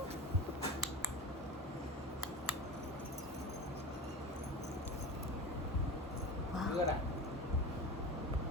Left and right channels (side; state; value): both; normal; correlation 0.30